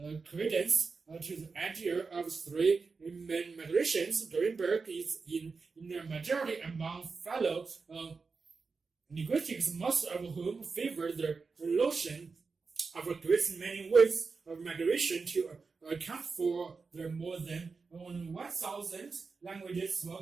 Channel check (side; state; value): left; quieter; 4.6 dB